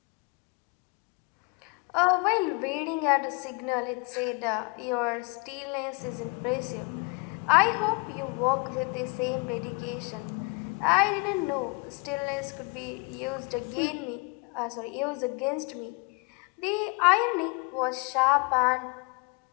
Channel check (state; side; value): quieter; right; 29.8 dB